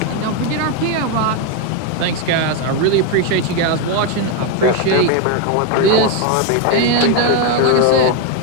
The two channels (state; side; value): different; both; correlation 0.02